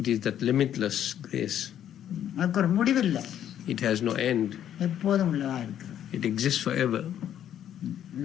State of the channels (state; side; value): quieter; right; 10.4 dB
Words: is that limitless grace. அதுக்கு ஒரு முடிவு இல்லை. It has no end. எப்போதும் உள்ளதா இருக்கு. It exists forever.